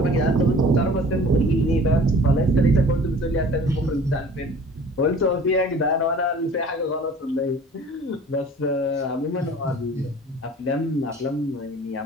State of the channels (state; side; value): normal; both; correlation 0.47